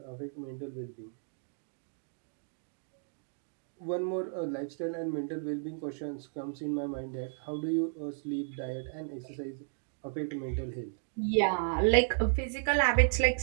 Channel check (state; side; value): silent; left; digital silence